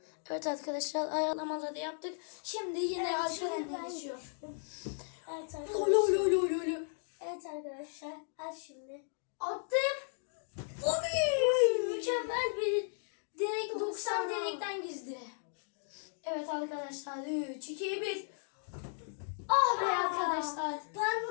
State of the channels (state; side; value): silent; right; digital silence